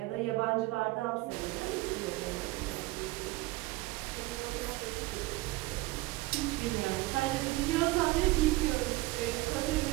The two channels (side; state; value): left; quieter; 20.4 dB